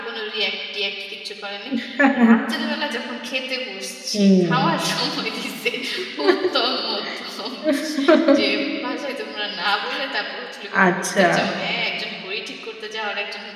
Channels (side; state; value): both; identical; correlation 1.00